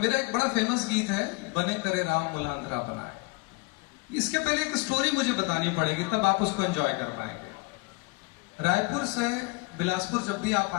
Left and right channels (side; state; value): right; quieter; 26.1 dB